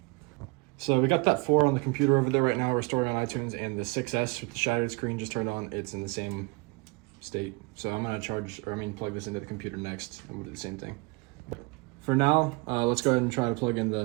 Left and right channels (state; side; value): quieter; left; 27.0 dB